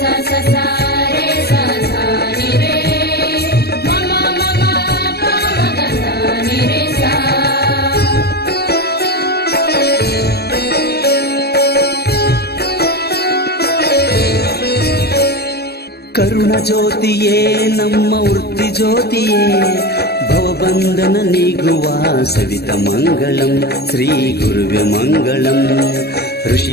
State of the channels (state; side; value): late; right; 0.47 ms